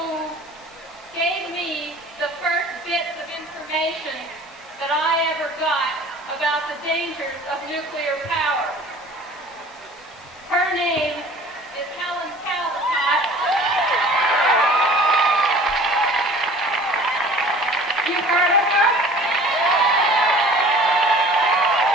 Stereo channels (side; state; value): both; normal; correlation 0.46